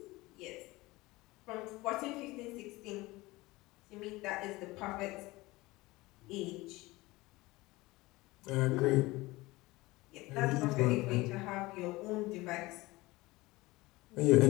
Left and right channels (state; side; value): quieter; right; 20.7 dB